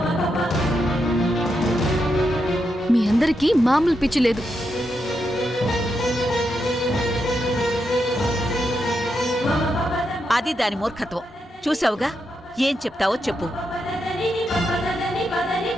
మీ అందరికీ మామూలు పిచ్చి లేదు. అది దాని మూర్ఖత్వం. చూసావుగా, ఏం చెప్తావో చెప్పు.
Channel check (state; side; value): normal; both; correlation 0.84